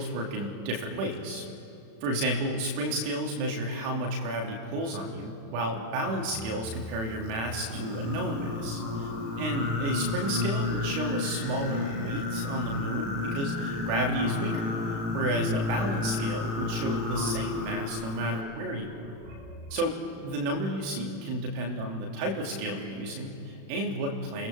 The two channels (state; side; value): late; left; 36 ms